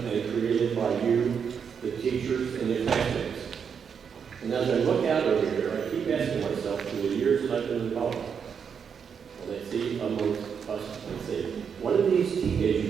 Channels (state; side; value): quieter; left; 6.9 dB